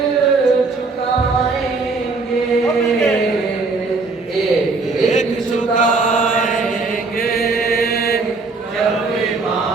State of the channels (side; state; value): left; quieter; 3.9 dB